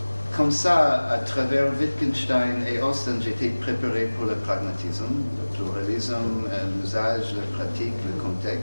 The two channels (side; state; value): both; inverted; correlation -1.00